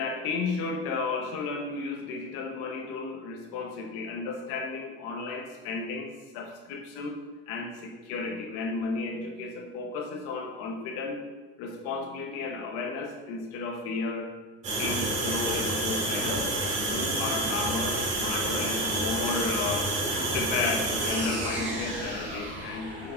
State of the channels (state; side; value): normal; both; correlation 0.17